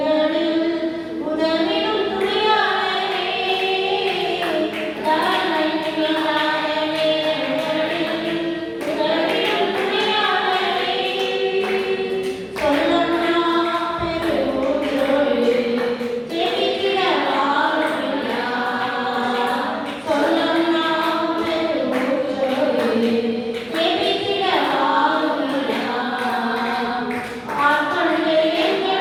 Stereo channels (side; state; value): both; identical; correlation 1.00